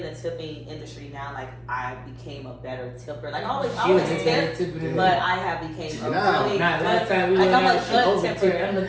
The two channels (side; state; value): both; identical; correlation 1.00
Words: the tipping industry now, like I became a better tipper. Like I always tip, but I have became a really last time we like I'm a good good tipper. I'm